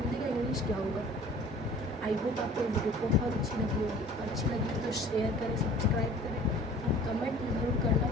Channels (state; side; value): normal; both; correlation 0.48